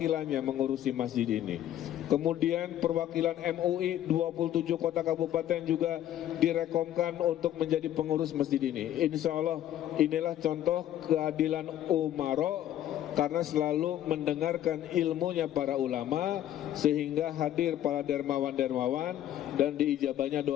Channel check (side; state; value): right; quieter; 11.8 dB